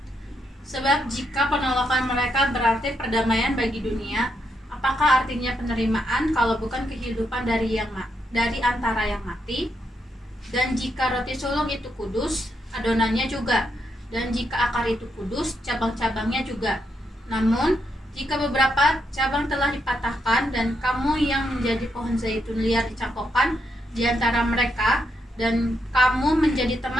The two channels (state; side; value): normal; both; correlation 0.80